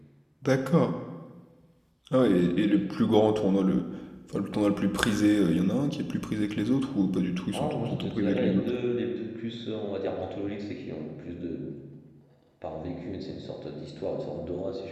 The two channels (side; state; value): both; identical; correlation 1.00